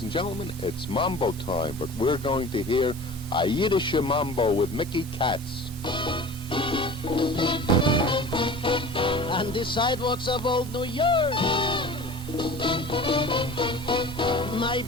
and gentlemen, it's Mambo time, but we're going to hear a Yiddish Mambo with Mickey Katz. On the sidewalks of old New York, my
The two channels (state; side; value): normal; both; correlation 0.39